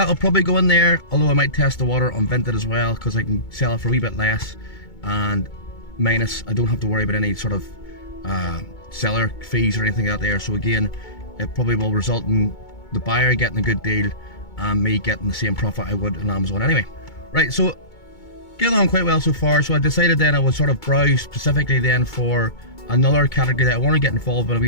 probably go in there, although I might test the water on Vinted as well, because I can sell it for a wee bit less, and minus, I don't have to worry about any sort of seller fees or anything out there. So again, it probably will result in the buyer getting a good deal and me getting the same profit I would on Amazon anyway. Right, so getting on quite well so far. So I decided then I would sort of browse specifically then for another category that I want to get involved with a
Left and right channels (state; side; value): late; right; 2.2 ms